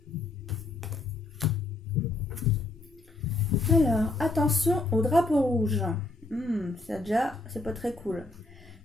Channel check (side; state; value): right; quieter; 3.1 dB